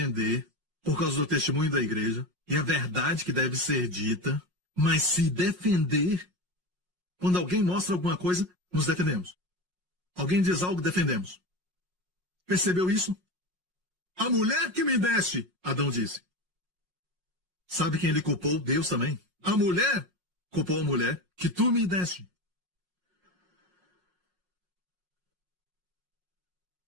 por causa do testemunho da igreja e a verdade que deve ser dita, mas se defender, quando alguém mostra alguma coisa, nos defendemos. Alguém diz algo, defendemos. Percebeu isso? A mulher que me deste, Adão disse. Sabe quem ele culpou? Deus também. A mulher culpou a mulher que tu me deste.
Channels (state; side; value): late; left; 5.5 ms